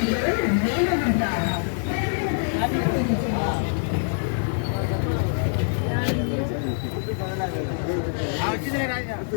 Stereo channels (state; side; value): silent; right; digital silence